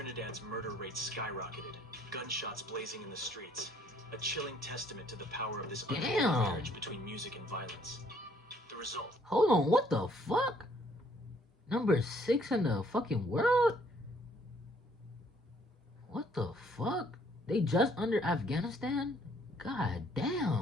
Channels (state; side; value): normal; both; correlation 0.63